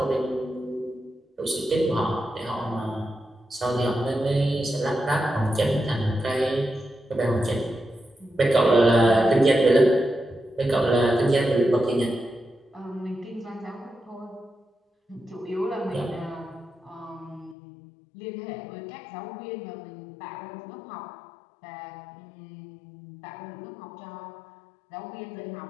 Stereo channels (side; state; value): right; drops out; at 17.6 s